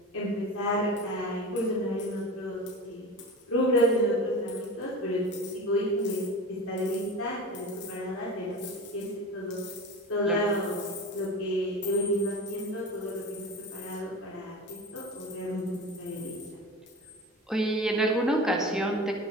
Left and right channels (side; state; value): both; normal; correlation 0.31